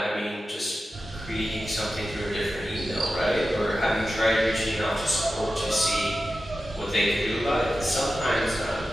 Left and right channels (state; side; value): normal; both; correlation 0.93